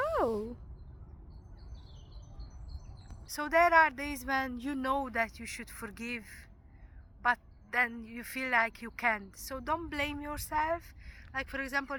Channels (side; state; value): both; identical; correlation 1.00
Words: So there are days when you know that you should forgive, but then you feel like you can't. So don't blame yourself. Like, for example,